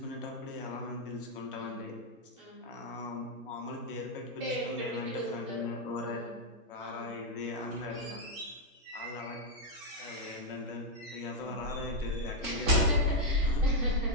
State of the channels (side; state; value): both; normal; correlation -0.01